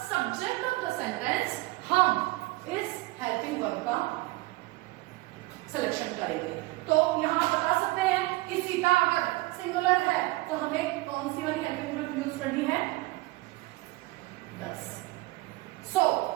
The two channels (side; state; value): left; quieter; 21.0 dB